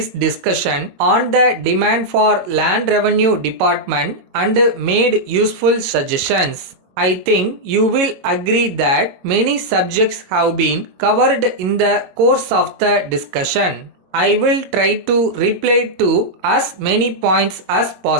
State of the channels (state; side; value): late; left; 22 ms